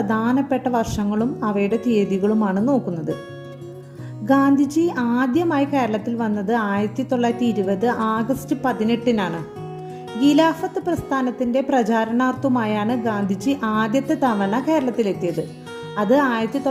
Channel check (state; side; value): identical; both; correlation 1.00